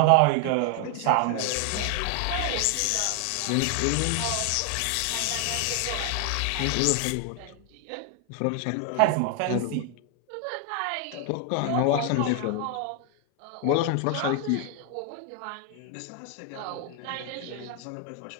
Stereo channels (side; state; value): both; different; correlation 0.00